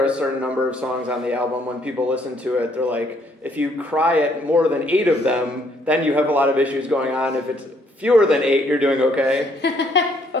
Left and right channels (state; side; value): normal; both; correlation 0.67